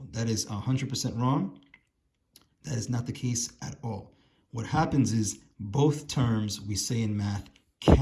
That is 100% wrong. That is not the case at all. What happens is both terms, we say in math,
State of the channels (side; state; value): both; identical; correlation 1.00